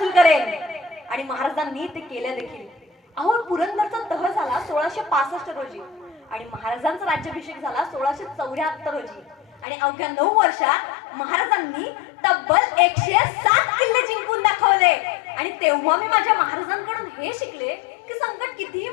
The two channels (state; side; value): drops out; right; at 9.7 s